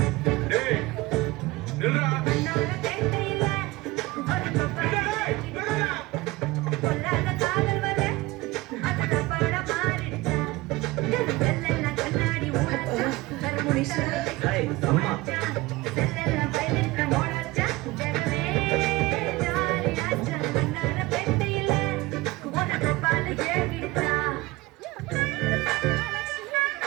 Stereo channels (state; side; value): quieter; left; 20.9 dB